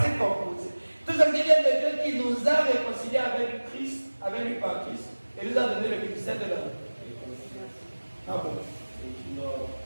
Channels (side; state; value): both; inverted; correlation -1.00